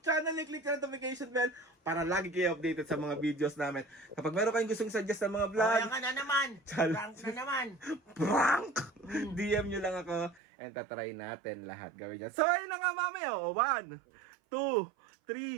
and click the notification bell para lagi kayo updated sa mga videos namin. Kapag meron kayong gustong suggest ng mga vlog, Kaya ka na naman. Prank na naman. prank! DM nyo lang ako and tatry natin lahat gawin yan. So ayun na nga mami, 1, 2,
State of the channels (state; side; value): drops out; left; at 10.4 s